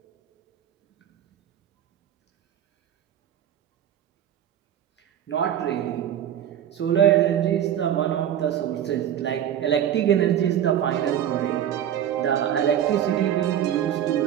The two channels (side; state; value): left; quieter; 10.3 dB